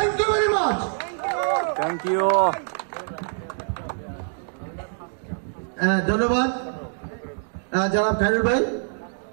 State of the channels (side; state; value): left; silent; 62 dB below the other